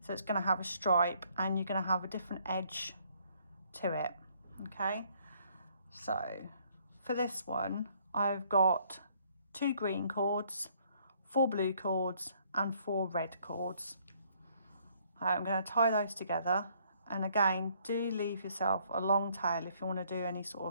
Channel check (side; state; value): both; inverted; correlation -0.65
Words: So it's going to have a stripe and you're going to have a different edge to it. Okay, so for this one I've got 2 green cords, 4 blue cords and 4 red cords. I'm going to tie those together, and again, do leave yourself a long tail if you want to do any